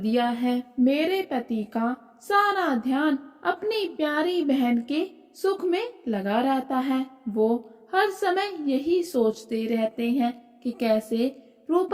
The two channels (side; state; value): both; identical; correlation 1.00